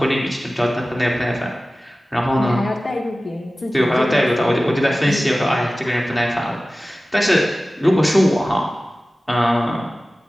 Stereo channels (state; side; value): normal; both; correlation 0.96